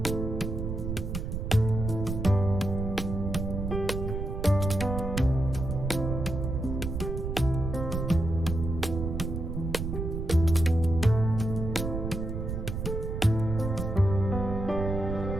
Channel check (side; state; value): right; noise; rumble, 4 dB below the sound